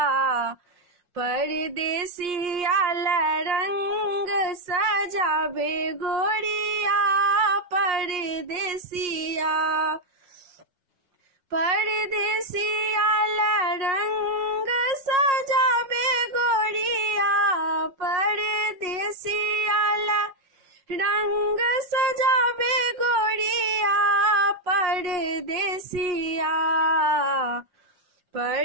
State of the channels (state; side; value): late; left; 5.5 ms